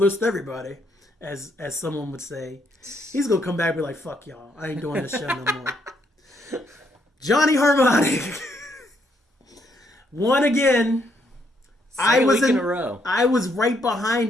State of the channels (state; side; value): normal; both; correlation 0.74